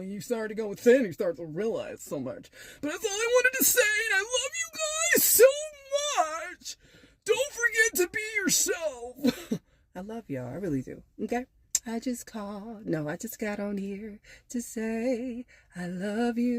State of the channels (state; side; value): identical; both; correlation 1.00